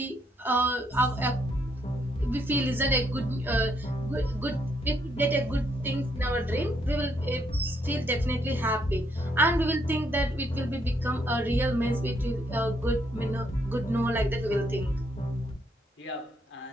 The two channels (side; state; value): both; normal; correlation 0.73